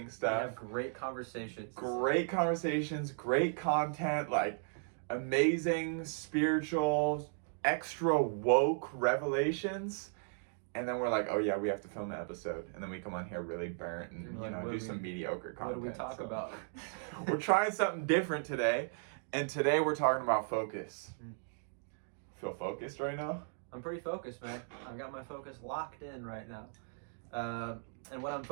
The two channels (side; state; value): left; silent; digital silence